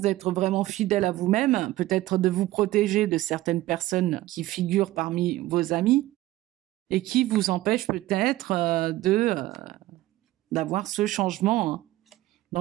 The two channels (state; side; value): quieter; left; 16.6 dB